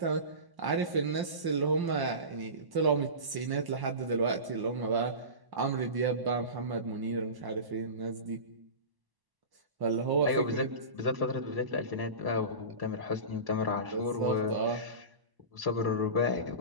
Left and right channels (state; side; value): late; left; 1.0 ms